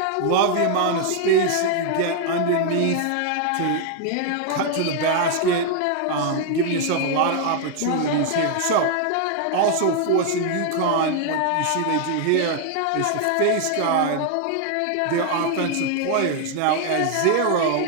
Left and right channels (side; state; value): both; different; correlation 0.00